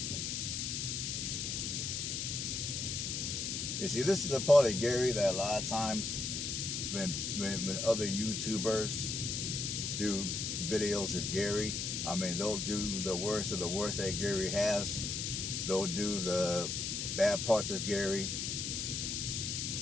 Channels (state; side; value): noise; left; hiss, 2 dB below the sound